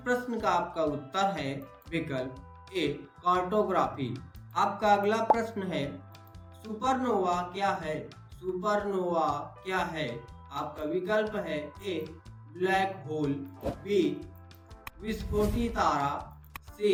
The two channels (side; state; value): both; identical; correlation 1.00